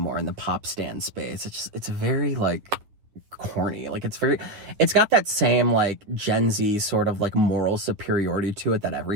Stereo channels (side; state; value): left; late; 9.6 ms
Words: in the pop stand space. It's very, like, corny. Like, it's got that same like Gen Z sort of like moral superiority to it that